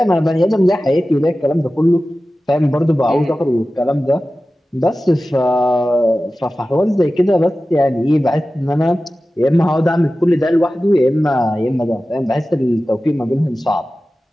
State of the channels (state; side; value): normal; both; correlation 0.95